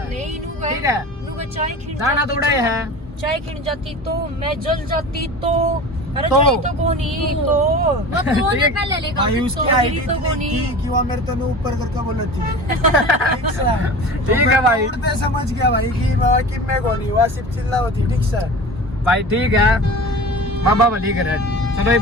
नहीं ठीक है, चाय खिंड दाना थोड़ा है, चाय खिंड जाती तो मैं जल जाती तो। अरे तो जाई तो कोनी तो वो कोने पहले लेगा तो गिरी तो कोनी। कि वो मेरे तो ऊपर करके बोला थी। ठीक है भाई, उड़ते समझ गया भाई कि मैं कोनी हुआ, सिर्फ चिल्ला होती। ठीक सर भाई ठीक है, बाबा भली करे। चलो ये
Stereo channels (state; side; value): normal; both; correlation 0.35